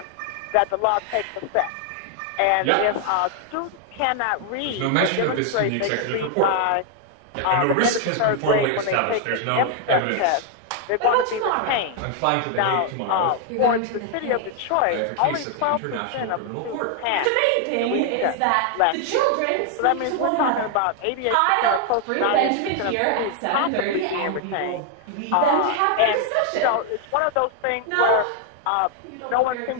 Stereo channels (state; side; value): different; both; correlation 0.00